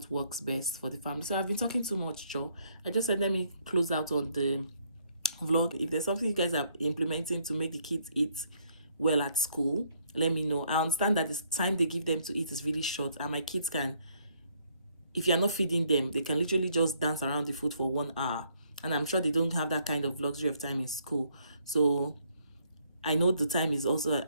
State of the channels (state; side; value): inverted; both; correlation -0.69